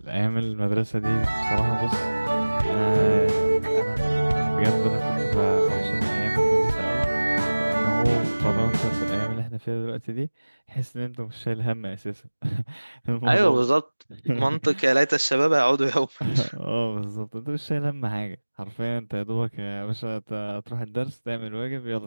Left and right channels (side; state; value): both; inverted; correlation -1.00